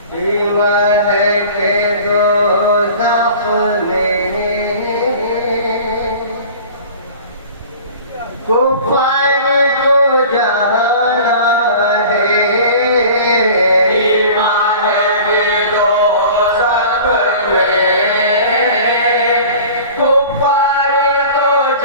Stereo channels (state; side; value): inverted; both; correlation -0.42